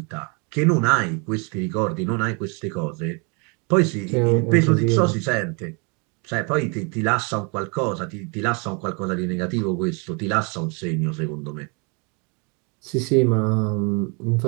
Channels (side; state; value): left; quieter; 33.4 dB